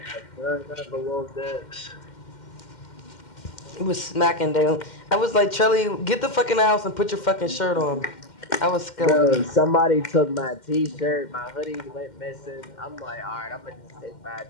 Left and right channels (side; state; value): right; late; 2.1 ms